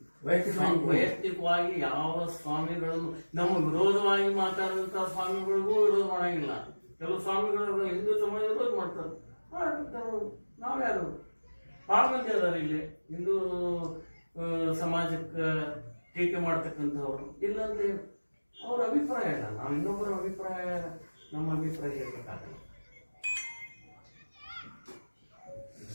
ವೈಯಕ್ತಿಕ ವೈಯಕ್ತಿಕವಾಗಿ ಯಾವ ಸ್ವಾಮಿಗಳನ್ನು ನಮ್ಮ ವಿರೋಧವಾಗಿ ಮಾತಾಡುವಂತ ಸ್ವಾಮಿಗಳಿಗೂ ವಿರೋಧ ಮಾಡಂಗಿಲ್ಲ. ಕೆಲವು ಸ್ವಾಮಿಗಳು ಹಿಂದೂ ಸಮಾಜ ವಿರೋಧ ಮಾಡ್ತಾರೆ, ನಾವ್ಯಾರು ಬಹಳ ಮಂದಿ ಅದಾರ ಇಲ್ಲಿ ಹಿಂದೂ ಸಮಾಜಕ್ಕೆ ಟೀಕೆ ಮಾಡ್ತಕ್ಕಂಥವ್ರು. ಇಲ್ಲಂದ್ರೆ ಅವ್ರ ಅಭಿಪ್ರಾಯ ಇಲ್ಲ, ನಾವು ಇನ್ನೊಬ್ಬರ ಅಭಿಪ್ರಾಯ ನಮ್ಮ ಅಭಿಪ್ರಾಯ ಇರಬೇಕಾಗಲ್ಲ.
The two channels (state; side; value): inverted; both; correlation -1.00